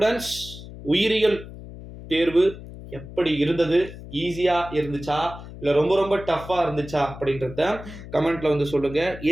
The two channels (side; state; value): left; noise; hum, 14 dB below the sound